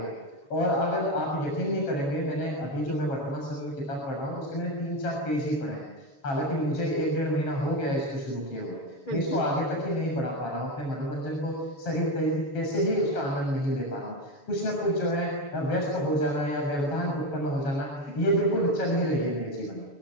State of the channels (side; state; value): right; late; 7.0 ms